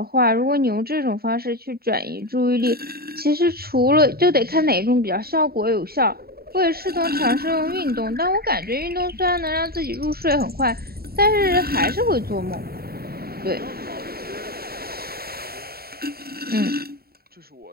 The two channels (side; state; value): left; late; 0.45 ms